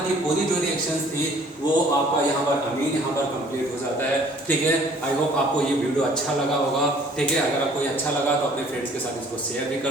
की पूरी जो रिएक्शंस थी वो आपका यहाँ पर अमीन यहाँ पर कंप्लीट हो जाता है, ठीक है। आई होप आपको ये वीडियो अच्छा लगा होगा, ठीक है। अगर आपको ये अच्छा लगा तो अपने फ्रेंड्स के साथ इसको शेयर भी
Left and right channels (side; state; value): both; normal; correlation 0.55